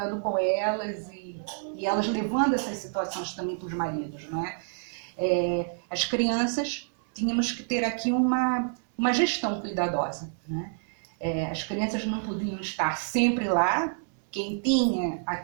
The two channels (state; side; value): silent; left; 59 dB below the other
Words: com elas e elas levando essas situações também para os maridos, não é? As crianças, tínhamos que ter aqui uma gestão cuidadosa, né? As crianças não podiam estar sempre lá. Quem tinha